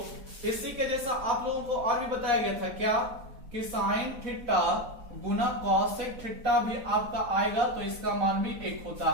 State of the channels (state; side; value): late; left; 4.1 ms